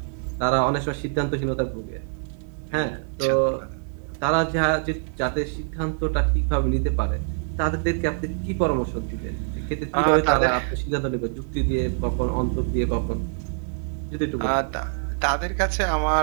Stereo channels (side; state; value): left; silent; 62 dB below the other